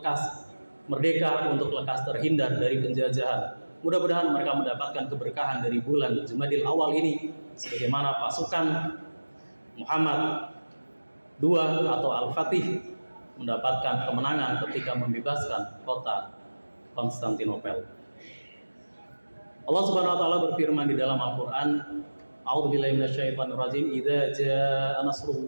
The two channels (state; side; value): inverted; both; correlation -1.00